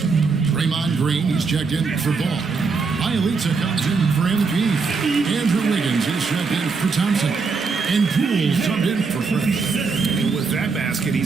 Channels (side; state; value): left; quieter; 4.7 dB